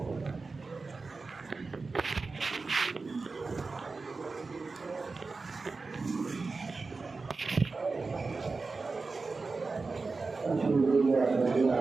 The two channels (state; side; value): quieter; left; 4.0 dB